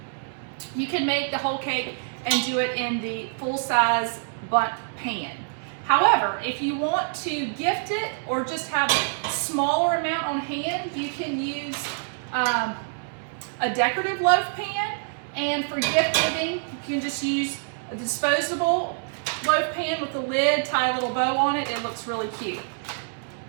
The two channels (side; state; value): left; silent; 61 dB below the other